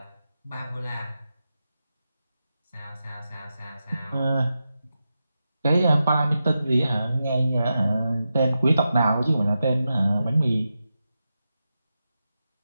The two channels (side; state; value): both; inverted; correlation -0.90